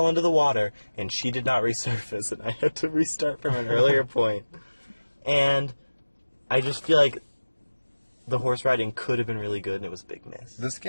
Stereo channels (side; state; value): both; inverted; correlation -1.00